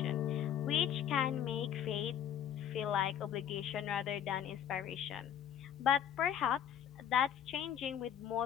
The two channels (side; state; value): right; quieter; 9.5 dB